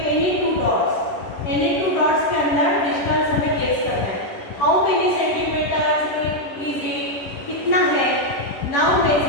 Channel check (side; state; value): right; late; 11 ms